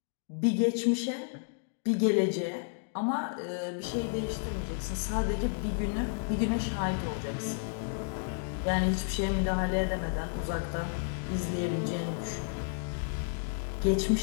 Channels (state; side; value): silent; right; digital silence